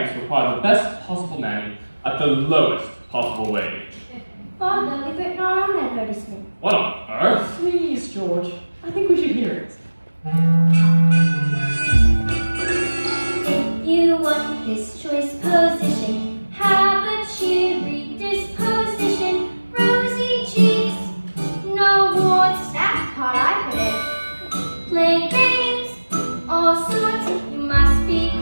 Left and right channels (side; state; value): both; inverted; correlation -1.00